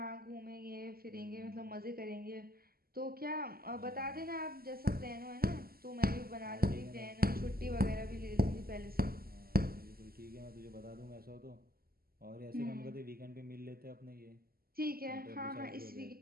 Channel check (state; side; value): late; left; 0.43 ms